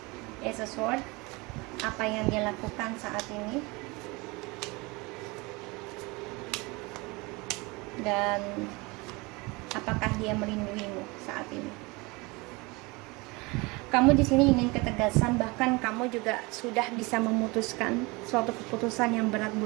As a sword, apa yang dia lakukan saat ini, dan apakah dia melindungimu saat ini. Kamu di sini ingin ketegasan, bahkan kamu juga sudah bisa memutuskan suatu keputusan yang berat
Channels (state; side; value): quieter; left; 25.3 dB